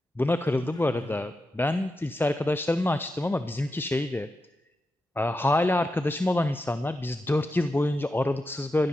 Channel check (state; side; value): normal; both; correlation 0.89